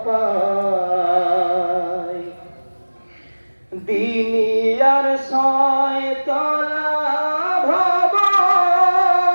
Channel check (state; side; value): inverted; both; correlation -1.00